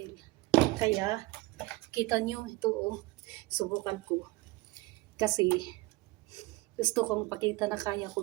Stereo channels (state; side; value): quieter; left; 22.1 dB